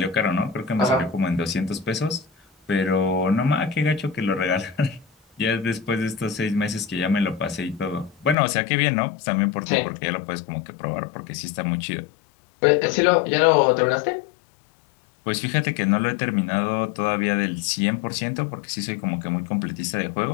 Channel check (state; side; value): drops out; right; at 8.3 s